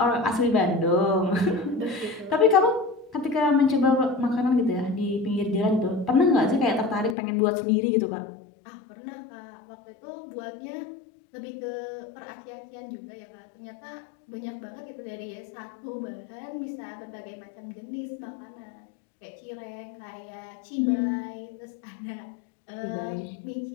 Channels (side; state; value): right; drops out; at 7.2 s